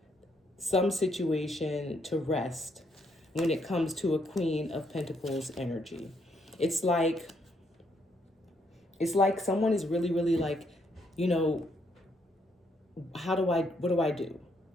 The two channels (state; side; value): normal; both; correlation 0.73